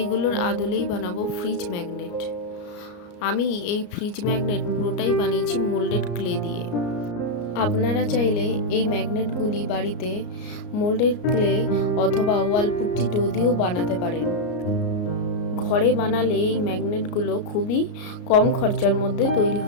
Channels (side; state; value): right; late; 34 ms